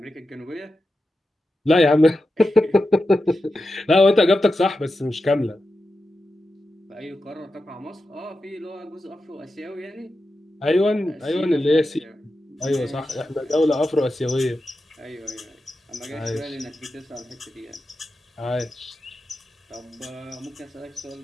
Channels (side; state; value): both; normal; correlation 0.90